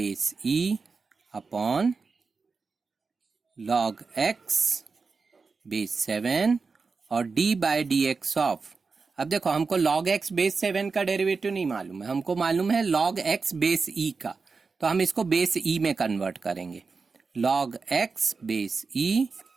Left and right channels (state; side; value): quieter; left; 4.6 dB